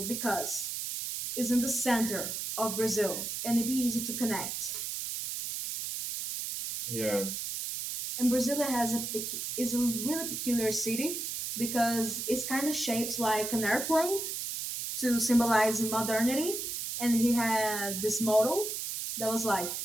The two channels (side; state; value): right; noise; hiss, 4 dB below the sound